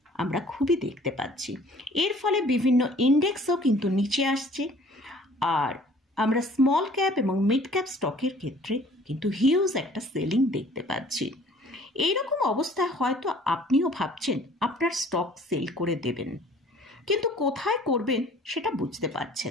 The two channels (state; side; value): normal; both; correlation 0.53